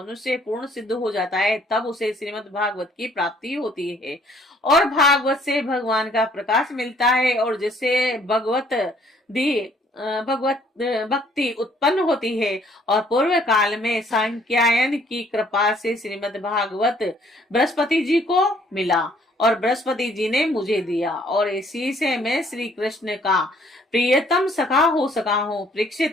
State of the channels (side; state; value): both; normal; correlation 0.62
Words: पूर्ण सिद्ध हो जाता है तब उसे श्रीमद् भागवत की प्राप्ति होती है और भागवत से भगवान का प्रकाश मिलता है और जिससे भगवत भक्ति उत्पन्न होती है। और पूर्व काल में सांख्यायन की कृपा से श्रीमद् भागवत बृहस्पति जी को मिला और बृहस्पति जी ने मुझे दिया और इसी से मैं श्री कृष्ण का प्रियतम सखा हो सका हूँ।